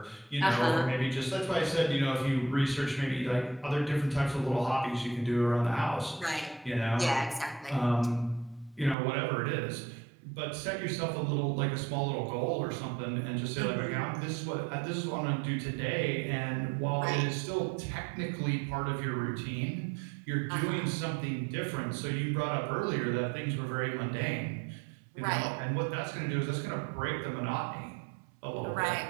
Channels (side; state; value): left; drops out; at 9.0 s